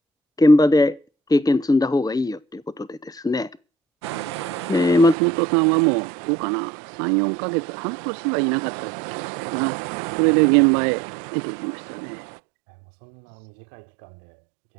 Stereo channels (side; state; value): left; drops out; at 5.2 s